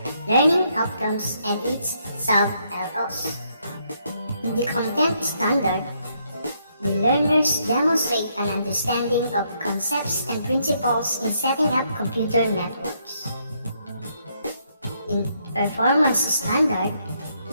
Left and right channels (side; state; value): both; inverted; correlation -0.74